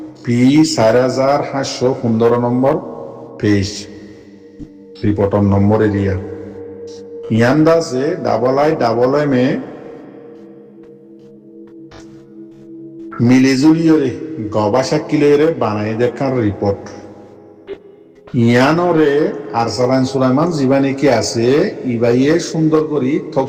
P 4715 number page রিপোর্টর number area ইয়ান্দাসে double M A মিলিজুলিয়রে গবা সাকিলেরে বানাই দেখার রিপোর্ট ইয়ানরে আরসালান সুলাইমান জীবানী কি আছে ইবাইয়ে সুন্দর করি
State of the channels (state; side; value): identical; both; correlation 1.00